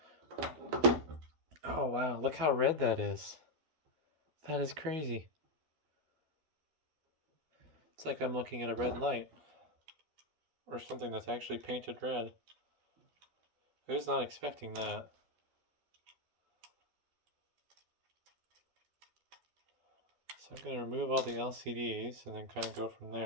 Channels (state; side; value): late; left; 12 ms